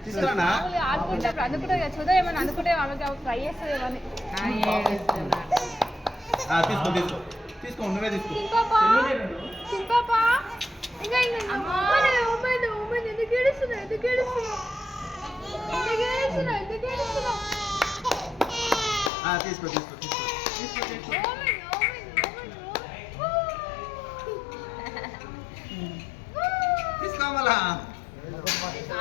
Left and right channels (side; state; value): right; drops out; at 19.1 s